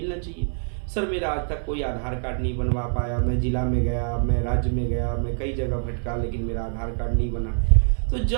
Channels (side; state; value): left; silent; digital silence